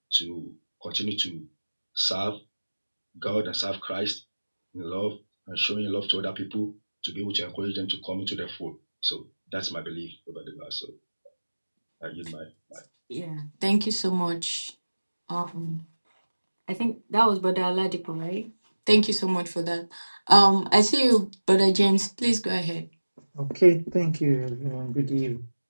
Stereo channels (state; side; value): inverted; both; correlation -1.00